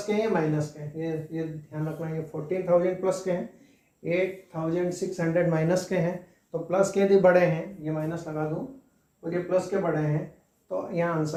के हैं, माइनस के हैं, ये ध्यान रखना। ये 14,000 प्लस के हैं, 8,600 माइनस के हैं। तो प्लस के यदि बड़े हैं, ये माइनस लगा दूं, और ये प्लस के बड़े हैं, तो यहाँ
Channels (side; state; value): both; identical; correlation 1.00